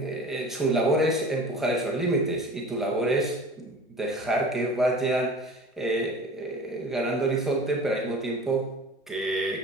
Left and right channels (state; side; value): normal; both; correlation 0.40